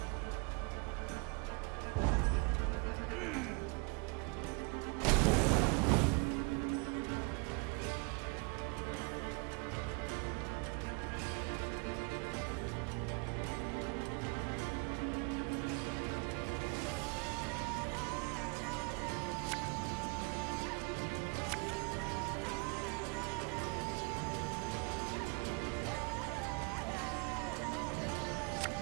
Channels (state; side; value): quieter; left; 31.7 dB